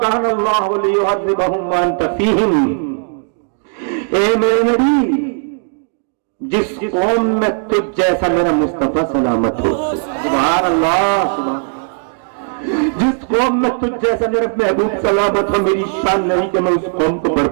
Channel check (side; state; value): left; silent; 64 dB below the other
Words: अल्लाहु लियुअज़्ज़िबहुम व अंत फीहिम। ए मेरे नबी, जिस कौम में तुझ जैसा मेरा मुस्तफा सलामत हो, सुभान अल्लाह, सुभान, जिस कौम में तुझ जैसा मेरा महबूब सलामत हो, मेरी शान नहीं कि मैं उस कौम को